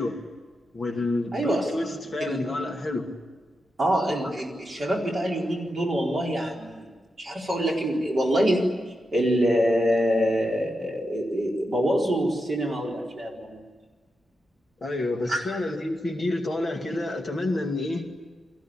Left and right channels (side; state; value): both; normal; correlation 0.87